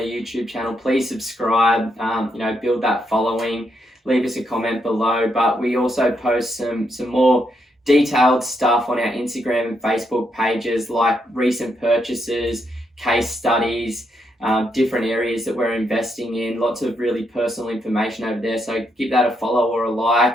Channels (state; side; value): normal; both; correlation 0.78